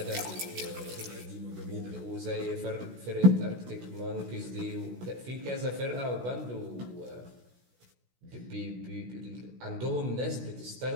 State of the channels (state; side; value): late; left; 16 ms